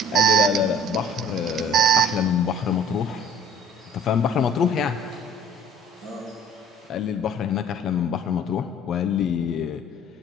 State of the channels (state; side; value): normal; both; correlation 0.50